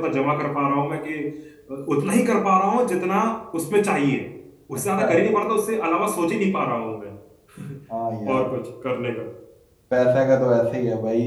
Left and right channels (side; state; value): both; identical; correlation 1.00